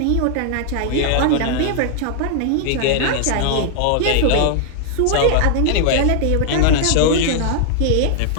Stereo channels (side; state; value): both; different; correlation 0.00